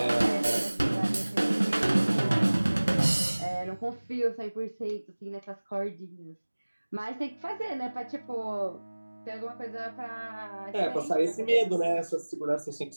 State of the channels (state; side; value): inverted; both; correlation -1.00